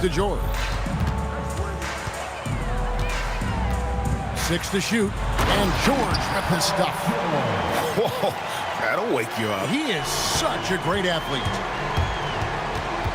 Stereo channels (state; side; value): identical; both; correlation 1.00